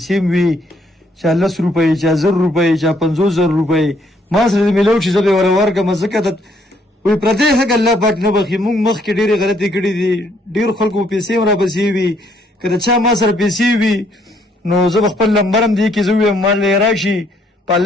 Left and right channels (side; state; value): both; normal; correlation 0.69